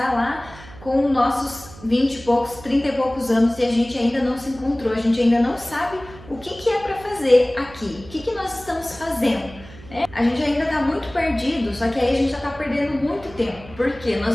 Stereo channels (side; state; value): right; noise; hum, 19 dB below the sound